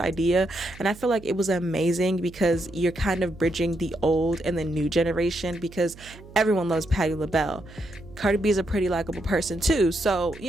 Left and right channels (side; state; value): right; noise; hum, 19 dB below the sound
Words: and I feel like it was amazing, because you're kind of bridging the old and the new generation, because everyone loves Patti LaBelle. Cardi B is a pretty likable person too, so